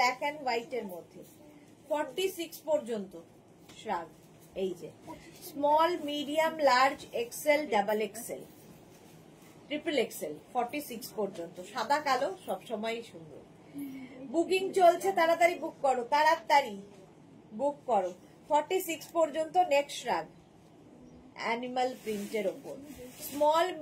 অ্যান্ড হোয়াইট এর মধ্যে। 46 পর্যন্ত শ্রাগ, এই যে small, medium, large, XL, double XL, triple XL. 46 পর্যন্ত সাদা কালো সবসময় সুন্দর। বুকিং চলছে, তাড়াতাড়ি বুক করো, তাড়াতাড়ি বুক করো। 46 পর্যন্ত নেক্সট শ্রাগ, অ্যানিমাল প্রিন্টের ওপর, small,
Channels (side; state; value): both; identical; correlation 1.00